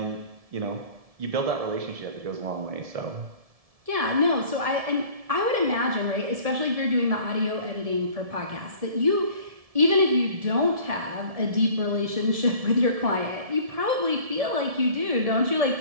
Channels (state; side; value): late; left; 1.7 ms